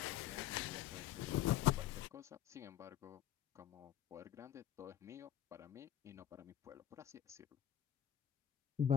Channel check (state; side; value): quieter; right; 11.0 dB